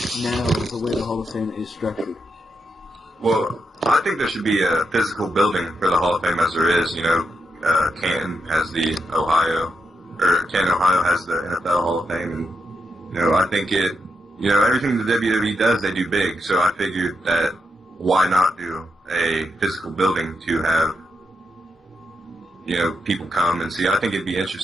now the way the Hall of Fame is structured? Well, I think there should be a physical building for the Hall of Fame, as there is. You know, Canton has Canton, Ohio has the NFL Hall of Fame, and, you know, I think everything the WWE does, they do big, so I figured that why not do a physical building to have, you know, people come and see. I think it'd be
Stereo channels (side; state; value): both; normal; correlation 0.83